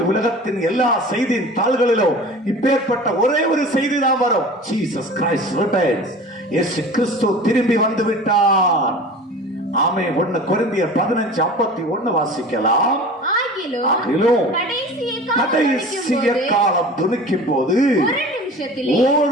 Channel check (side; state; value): both; normal; correlation 0.39